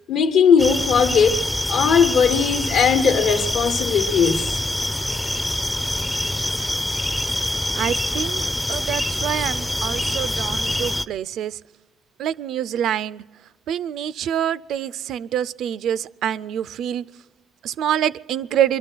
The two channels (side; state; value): both; normal; correlation 0.70